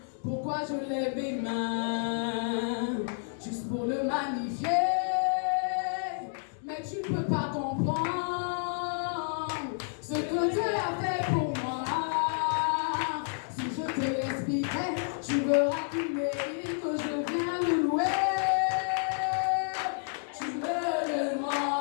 pourquoi je lève mes mains, juste pour le magnifier. Mais tu peux pas comprendre ce que Dieu a fait pour moi. Si je te l'expliquais, tu verras qu'il mérite que je vienne le louer. Tu me demandes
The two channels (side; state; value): right; silent; digital silence